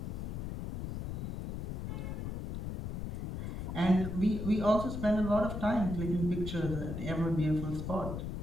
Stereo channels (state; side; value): noise; left; rumble, 5 dB below the sound